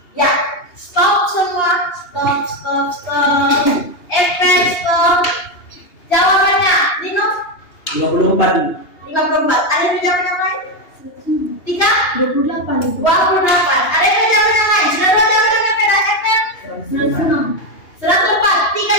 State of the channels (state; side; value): late; right; 2.8 ms